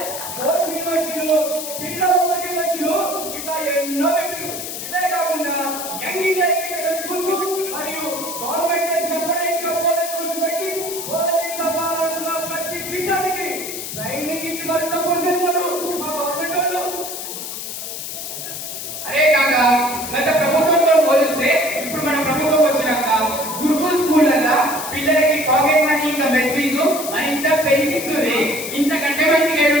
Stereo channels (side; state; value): left; noise; hiss, 7 dB below the sound